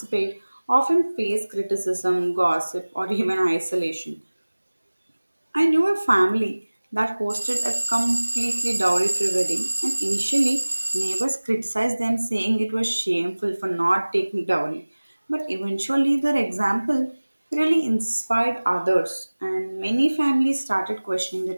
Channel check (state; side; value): inverted; both; correlation -1.00